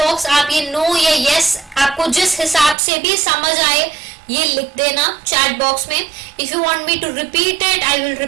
आप ये नो या यस आपको जिस हिसाब से भी समझ आए ये लिख देना चैट बॉक्स में. If you want me to repeat it, I will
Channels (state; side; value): drops out; left; at 2.8 s